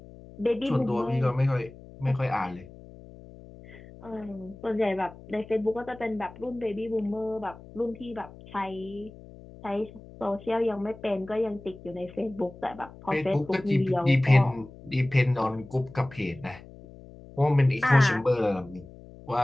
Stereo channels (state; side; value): noise; left; hum, 19 dB below the sound